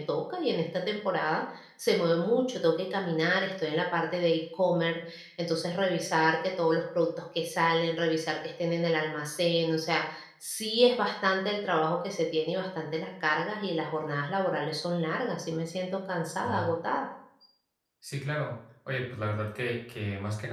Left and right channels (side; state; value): both; identical; correlation 1.00